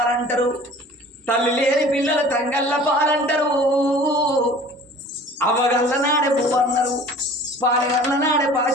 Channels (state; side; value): normal; both; correlation 0.46